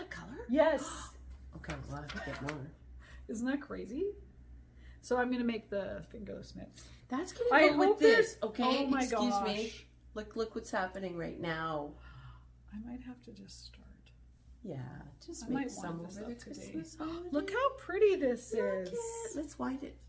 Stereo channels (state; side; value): identical; both; correlation 1.00